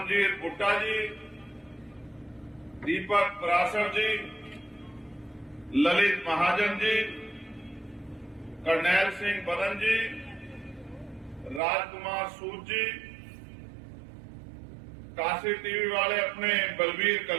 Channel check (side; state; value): left; drops out; at 11.6 s